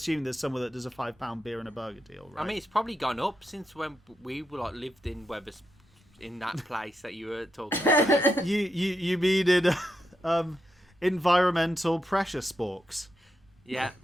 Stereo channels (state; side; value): normal; both; correlation 0.84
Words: there's somewhere that does a £5 beer and a burger deal, right? I mean, it's probably gone up since when we were lived in in that place that you were talking about. you mean in environmental pressure sporks? Yeah.